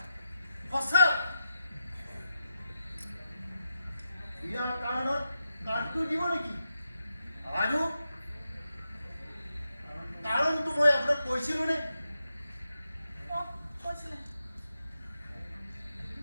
সঁচা। বিয়াৰ কাৰণত কাৰ্ডটো দিব নেকি? আৰু কাৰণটো মই আপোনাক কৈছিলো নে? কৈছিলে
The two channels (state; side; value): inverted; both; correlation -0.88